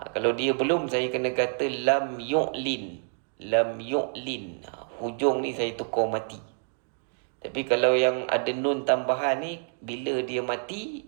dia belum, saya kena kata lam yu'lin. Lam yu'lin. Hujung ni saya tukar mati. Tapi kalau yang ada nun tambahan ni, bila dia mati,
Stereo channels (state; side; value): silent; left; 60 dB below the other